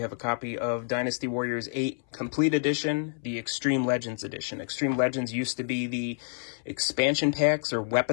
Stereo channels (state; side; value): silent; right; 59 dB below the other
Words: a copy of Dynasty Warriors 8 Complete Edition, the Extreme Legends Edition. Extreme Legends used to be the expansion packs or